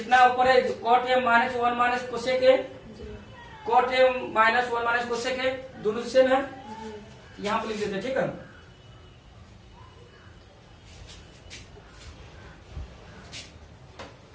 ऊपर है cot A minus 1 minus cosec A, cot A minus 1 minus cosec A दोनों सेम है, यहाँ पे लिख देते हैं। ठीक है,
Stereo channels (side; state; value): both; identical; correlation 1.00